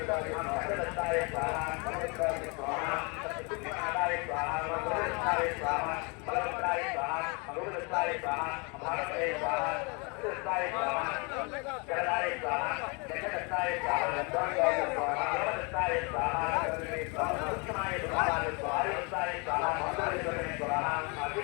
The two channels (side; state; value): right; quieter; 31.5 dB